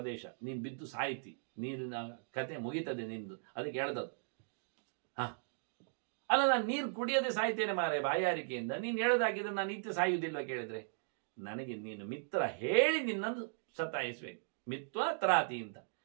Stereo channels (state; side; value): silent; left; digital silence